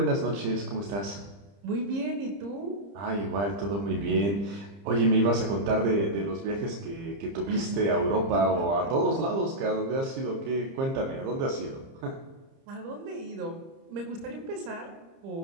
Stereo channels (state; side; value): late; left; 30 ms